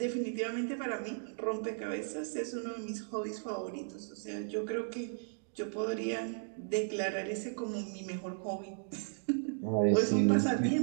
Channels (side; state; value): left; silent; digital silence